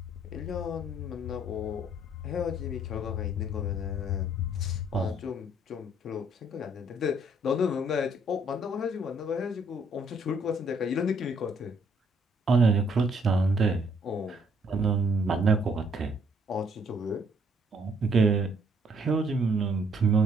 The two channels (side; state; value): both; normal; correlation 0.66